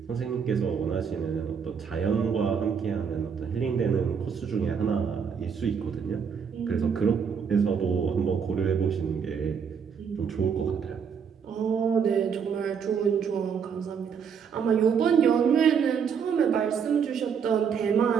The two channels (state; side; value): quieter; left; 6.8 dB